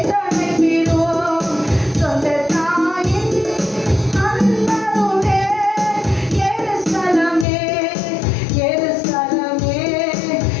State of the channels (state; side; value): drops out; right; at 7.5 s